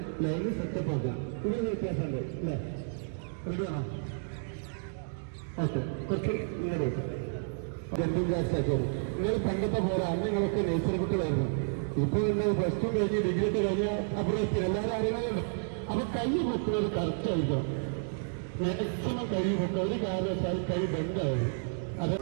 ലൈന് സെറ്റപ്പ് ആക്കാം. ഇതിന് വ്യത്യാസമുണ്ട് അല്ലേ? റെഡിയാണോ? ഓക്കെ, കുറച്ച് ഇങ്ങനെ ജമ്പിങ് ജാക്സ് ആക്കിയത്. നിങ്ങൾ പണ്ടത്തെ പോലെ അന്ന് നിങ്ങളൊക്കെ നേച്ചർ കുട്ടികളായിരുന്നു. ഇപ്പൊ നിങ്ങൾ പ്ലസ് ടു കഴിഞ്ഞ് ഡിഗ്രി ഒക്കെ കഴിഞ്ഞാൽ അപ്പുറത്ത് എല്ലാവരും അറിയണമല്ലോ. അപ്പൊ കൈ പൊക്കുന്നത് കറക്റ്റ് ആയിരിക്കണം. മാക്സിമം കൈ പൊക്കുക. ഒരു കാരണവശാൽ കൈ ബെൻഡാവും.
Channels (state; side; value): silent; left; digital silence